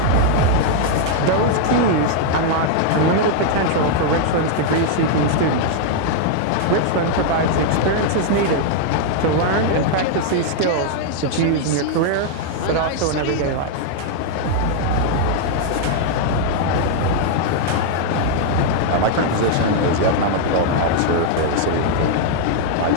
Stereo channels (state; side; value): different; both; correlation -0.01